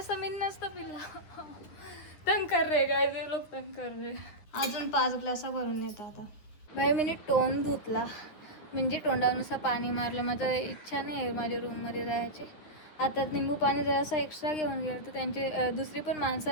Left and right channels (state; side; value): late; right; 9.9 ms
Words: मी नसतं पिल्ला. तंग कर रे काय ते लोक तंग कर रे. अजून 5 ग्लास भरून नेता आता भाई. मी तोंड धुतला म्हणजे तोंडानुसार पाणी मारलं. माझं इच्छा नाही आहे माझ्या रूममध्ये जायची. आता निंबू पाणी जरासं एक्स्ट्रा घेऊन गेलं तर त्यांची दुसरी पण